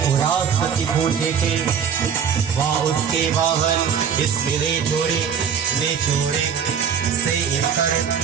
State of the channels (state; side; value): quieter; left; 7.4 dB